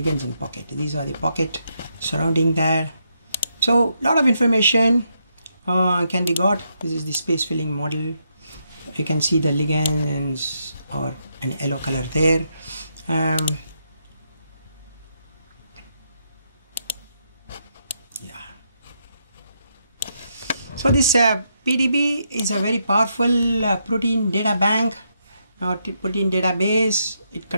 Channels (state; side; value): inverted; both; correlation -0.79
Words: in pocket. These are the pocket surrounding that. So a lot of information can be got. This is the space filling model. You can see the ligands or an yellow color there. So this PDB is a very powerful protein data bank or protein database. It